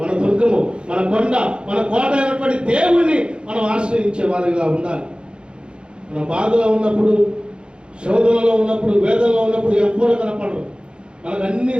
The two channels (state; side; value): late; left; 0.054 ms